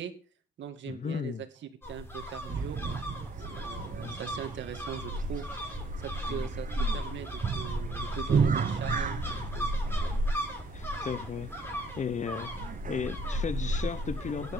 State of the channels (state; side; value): normal; both; correlation 0.62